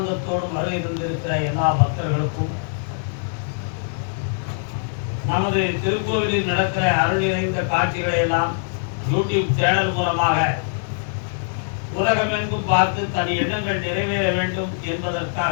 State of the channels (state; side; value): silent; right; 64 dB below the other